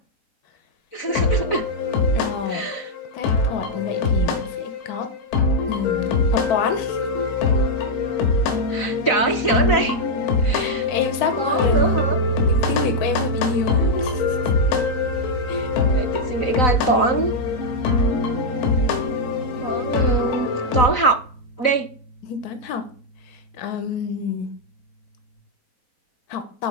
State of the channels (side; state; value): right; late; 4.0 ms